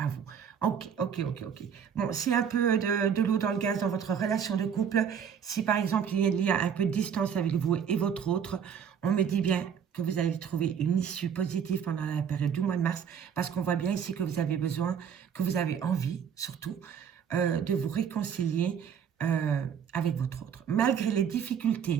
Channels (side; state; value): left; quieter; 7.8 dB